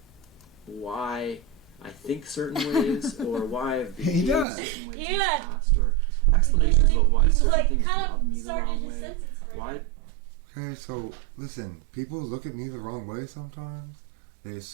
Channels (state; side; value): drops out; left; at 4.5 s